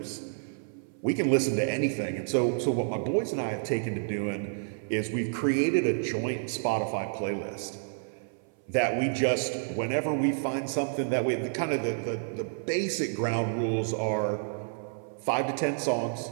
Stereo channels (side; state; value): left; silent; 58 dB below the other